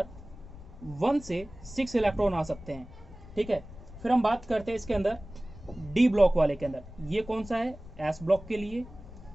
1 से 6 इलेक्ट्रॉन आ सकते हैं, ठीक है। फिर हम बात करते हैं इसके अंदर डी ब्लॉक वाले के अंदर, ये कौन सा है, एस ब्लॉक के लिए,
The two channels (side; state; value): left; noise; rumble, 16 dB below the sound